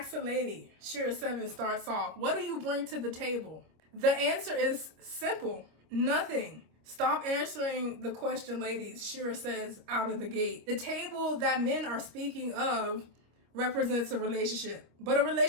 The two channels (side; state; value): left; late; 26 ms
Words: a lady, Shereaseven starts off, what do you bring to the table? The answer is simple, nothing. Stop answering the question, ladies, Shera says out of the gate. The table that men are speaking of represents a relationship. But a